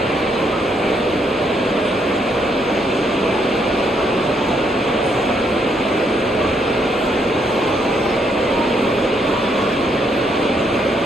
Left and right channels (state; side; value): normal; both; correlation 0.73